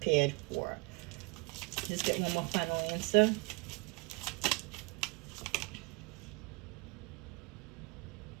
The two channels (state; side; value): quieter; left; 29.1 dB